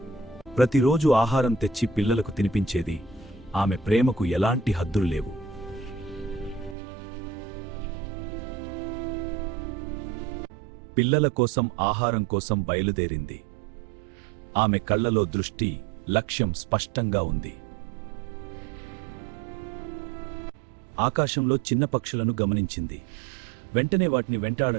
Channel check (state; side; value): drops out; left; at 6.8 s